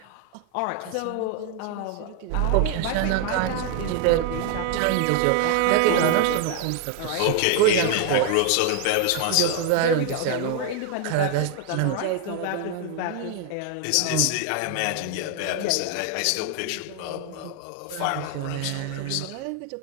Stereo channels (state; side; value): different; both; correlation 0.00